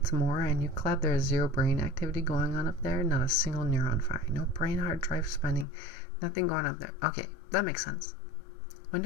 Mora and you clap, there is 0 brain activity going on up there, not a single neuron firing, no brain hard drive spinning, nothing going up there. Okay, that makes sense. When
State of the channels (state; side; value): drops out; right; at 5.7 s